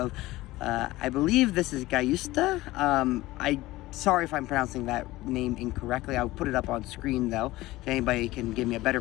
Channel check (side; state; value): right; quieter; 18.2 dB